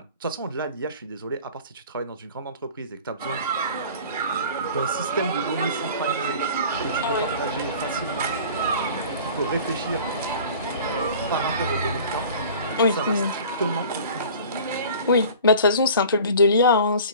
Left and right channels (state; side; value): inverted; both; correlation -0.44